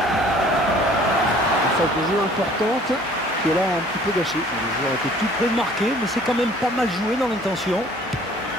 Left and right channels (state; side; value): normal; both; correlation 0.53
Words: De jeu importante qui est là un petit peu gâchée. Le joueur était tout près de marquer, mais c'est quand même pas mal joué dans l'intention.